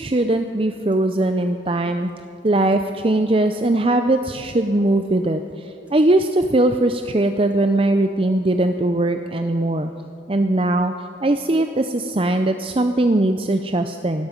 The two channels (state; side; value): normal; both; correlation 0.68